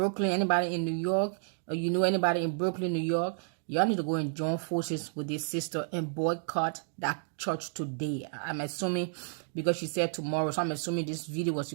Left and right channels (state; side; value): silent; left; digital silence